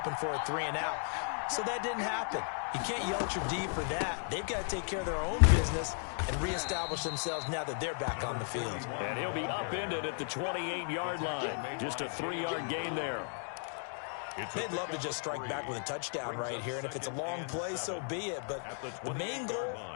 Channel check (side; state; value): right; silent; 54 dB below the other